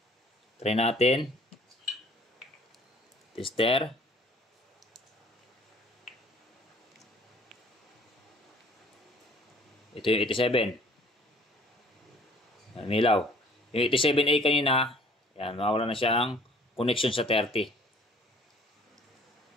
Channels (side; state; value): both; normal; correlation 0.55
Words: Try natin. Tester. Ito yung 87. Yan, milaw. Yung 87A kanina, yan, mawala na siyang connection sa 30.